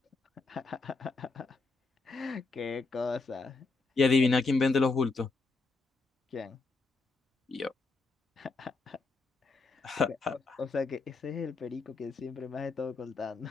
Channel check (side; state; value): right; quieter; 3.8 dB